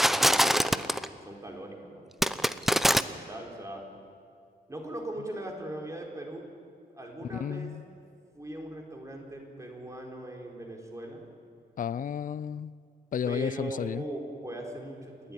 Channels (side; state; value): both; normal; correlation 0.82